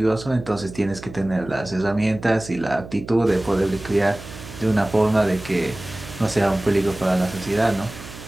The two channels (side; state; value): right; noise; hum, 15 dB below the sound